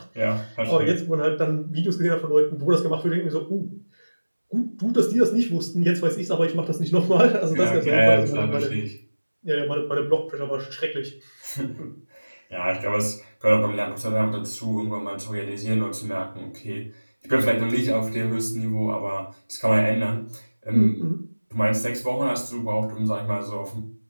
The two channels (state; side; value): inverted; both; correlation -1.00